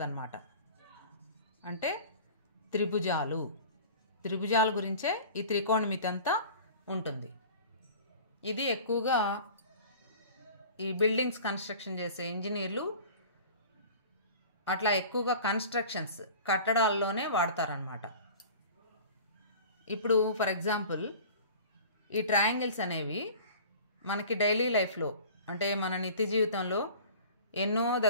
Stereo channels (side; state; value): both; inverted; correlation -0.42